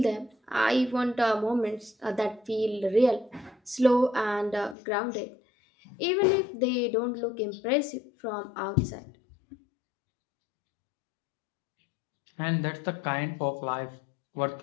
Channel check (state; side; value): drops out; right; at 4.8 s